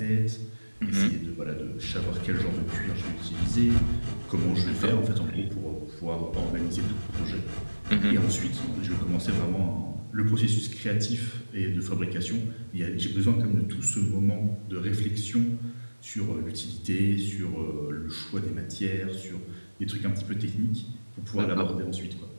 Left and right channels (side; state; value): both; inverted; correlation -1.00